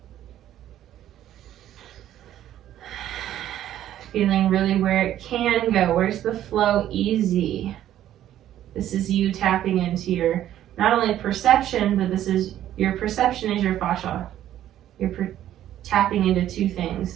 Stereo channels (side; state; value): left; quieter; 12.1 dB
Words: Feeling really where it can go. Where's the flow easy? This is you tapping into your, not only perception, but this is, your perception is your fascia. You're tapping into two things,